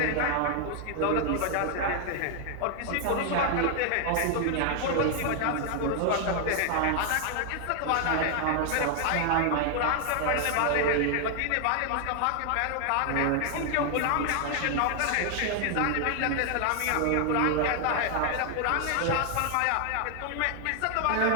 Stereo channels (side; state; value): both; different; correlation 0.00